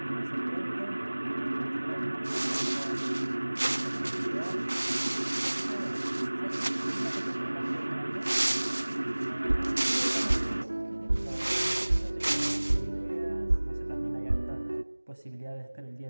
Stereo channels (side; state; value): both; inverted; correlation -1.00